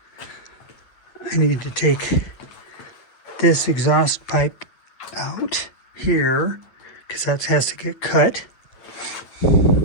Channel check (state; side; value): late; right; 8.8 ms